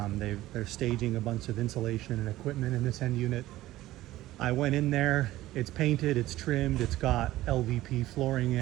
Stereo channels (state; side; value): quieter; left; 15.9 dB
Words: staging a bunch of insulation and equipment in this end unit. I went in there, it's painted, it's trimmed, it's got LVP flooring